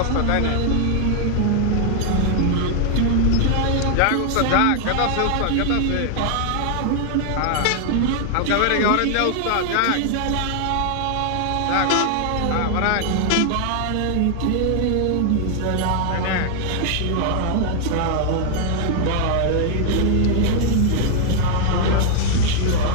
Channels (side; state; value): both; different; correlation 0.00